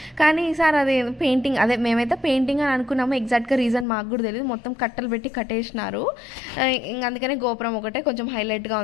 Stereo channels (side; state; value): right; drops out; at 3.9 s